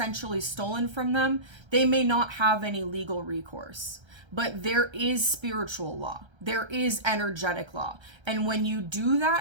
stolen from them, they may not have any legal recourse. But there is spiritual law. There is energetic law. And when you do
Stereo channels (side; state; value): left; late; 1.3 ms